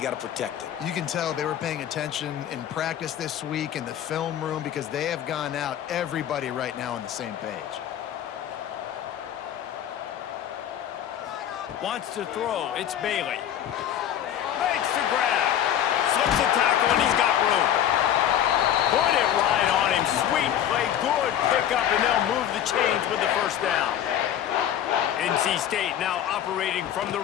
got to protect it. You can tell they were paying attention in practice this week in the film room, because they have gone out, everybody right now on the same page. Wants to throw. It's Bailey. Makes the grab. Slips a tackle, and he's got room. Put it right on him. Sweet play. Good pickup, and they'll move the chains with the first down. NC State now operating from the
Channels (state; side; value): quieter; right; 10.5 dB